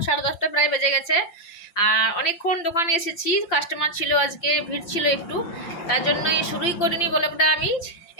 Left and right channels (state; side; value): late; right; 5.8 ms